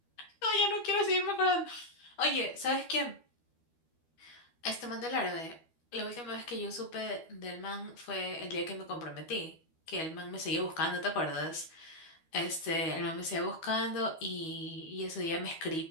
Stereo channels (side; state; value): right; late; 12 ms